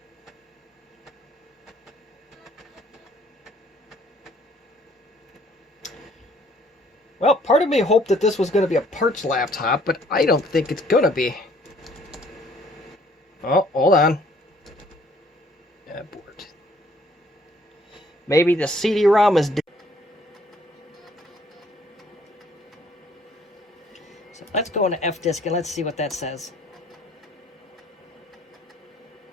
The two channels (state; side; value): normal; both; correlation 0.61